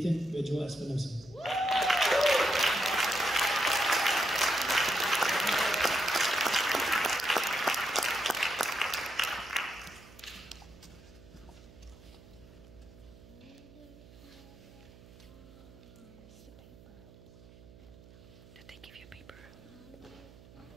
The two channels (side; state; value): right; noise; hum, 21 dB below the sound